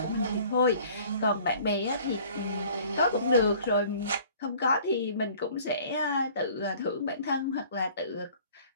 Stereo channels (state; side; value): inverted; both; correlation -0.51